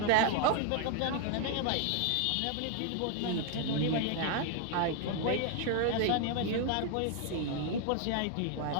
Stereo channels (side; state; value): both; different; correlation 0.00